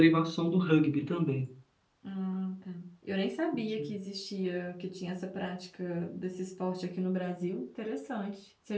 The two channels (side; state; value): both; identical; correlation 1.00